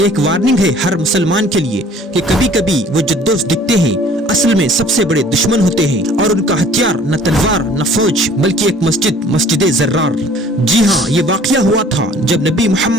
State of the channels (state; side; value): normal; both; correlation 0.53